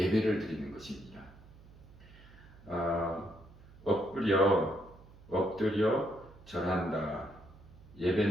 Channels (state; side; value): noise; right; hum, 22 dB below the sound